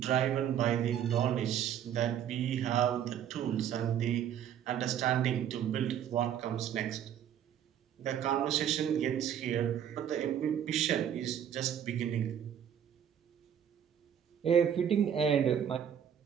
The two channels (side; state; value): left; quieter; 9.3 dB